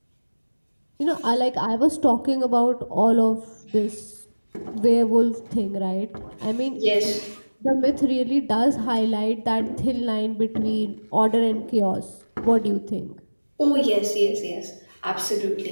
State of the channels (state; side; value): inverted; both; correlation -1.00